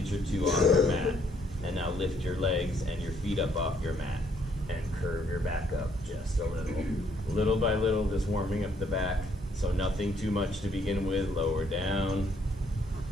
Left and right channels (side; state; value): both; normal; correlation 0.68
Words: or two off your mat. And now lift your legs and your feet up off your mat and curve your back up just a little. Little by little, just warming up the back. So nothing too much to begin with. Lower down.